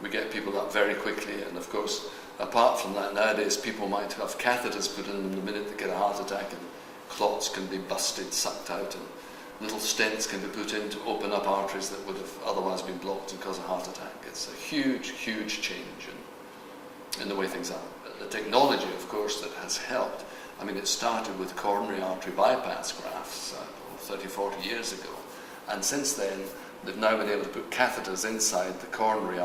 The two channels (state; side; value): identical; both; correlation 1.00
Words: We get people up very quickly, and of course, apart from that, nowadays people might have catheters put in them the minute they get a heart attack, and clots can be busted, sucked out, and little stents can be put in to open up arteries that would have otherwise been blocked and cause a heart attack. It's a huge, huge change in the way things are. The technology, of course, that has helped. I mean, it started with coronary artery bypass grafts 30, 40 years ago, and since then they've now been able to put catheters inside the coronary